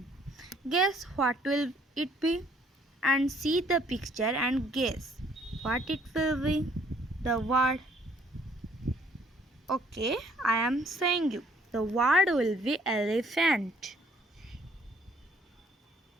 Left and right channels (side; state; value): both; normal; correlation 0.62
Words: Guess what will it be? And see the picture and guess what it will be. The word. Okay, I am saying you. The word will be elephant.